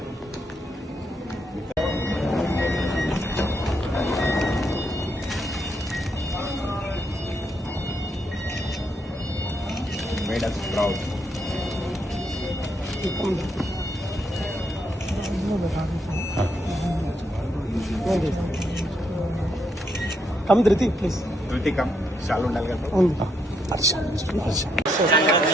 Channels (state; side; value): normal; both; correlation 0.77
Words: Made us proud. Come Dhriti, please. Dhriti come. Shalu ఉండాలి కదా.